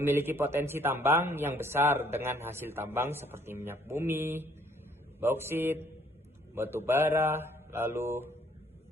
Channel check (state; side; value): normal; both; correlation 0.62